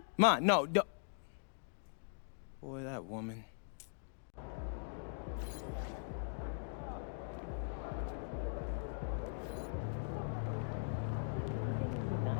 Ma, no. Boy, that woman.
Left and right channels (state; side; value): silent; right; digital silence